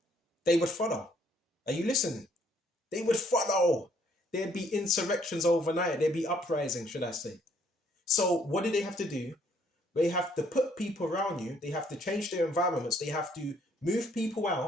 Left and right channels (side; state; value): both; normal; correlation 0.65